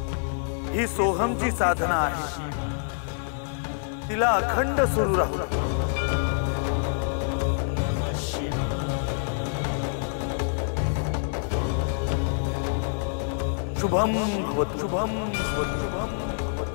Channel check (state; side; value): silent; right; digital silence